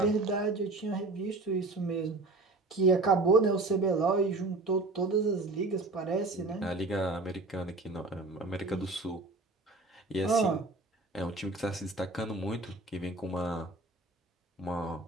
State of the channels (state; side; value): quieter; left; 3.1 dB